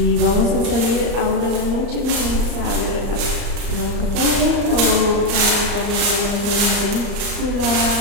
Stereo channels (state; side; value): late; left; 34 ms